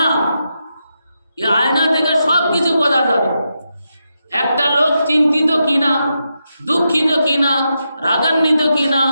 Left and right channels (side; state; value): both; inverted; correlation -0.86